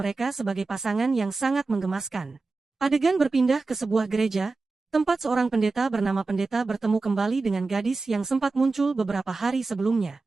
sebagai pasangan yang sangat menggemaskan. Adegan berpindah ke sebuah gereja, tempat seorang pendeta bernama Pendeta bertemu kembali dengan gadis yang sempat muncul beberapa hari sebelumnya.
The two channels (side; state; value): left; quieter; 3.8 dB